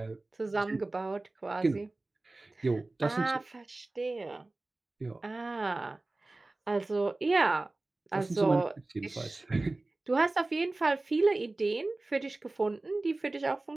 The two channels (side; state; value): left; quieter; 3.0 dB